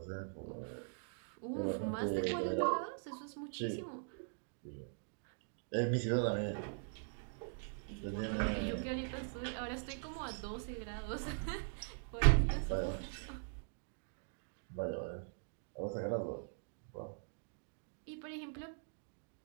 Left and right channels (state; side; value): silent; left; digital silence